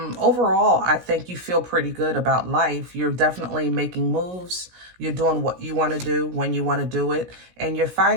I think you feel pretty good about life. You're definitely making moves. You're doing what you want to do when you want to do it. And you're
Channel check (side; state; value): left; late; 17 ms